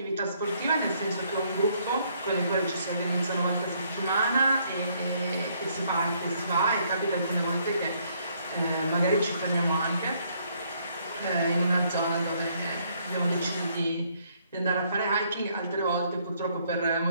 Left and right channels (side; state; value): both; inverted; correlation -0.69